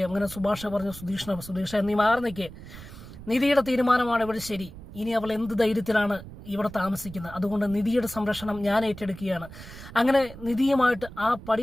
അങ്ങനെ സുഭാഷ് പറഞ്ഞു സുധീഷ നീ മാറി നിൽക്കേ, നിധിയുടെ തീരുമാനമാണ് ഇവിടെ ശരി. ഇനി അവൾ എന്ത് ധൈര്യത്തിലാണ് ഇവിടെ താമസിക്കുന്നത്, അതുകൊണ്ട് നിധിയുടെ സംരക്ഷണം ഞാൻ ഏറ്റെടുക്കുകയാണ്. അങ്ങനെ നിധിയുമായിട്ട് ആ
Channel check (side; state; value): right; noise; rumble, 15 dB below the sound